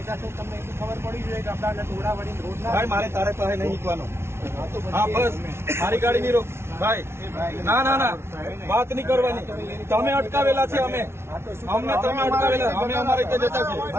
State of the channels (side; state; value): left; late; 0.12 ms